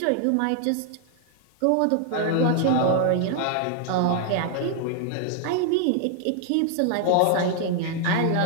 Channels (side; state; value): both; different; correlation 0.00